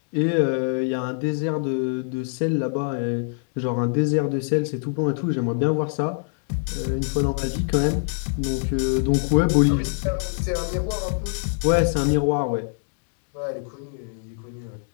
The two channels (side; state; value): right; silent; 62 dB below the other